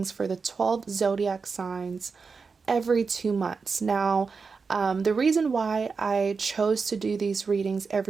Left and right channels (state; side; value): quieter; left; 4.9 dB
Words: for the 12 zodiac signs every 2 months. Now, the reason why I chose to do these readings